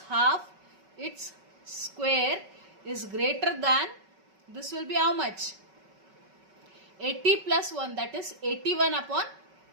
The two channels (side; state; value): left; late; 5.3 ms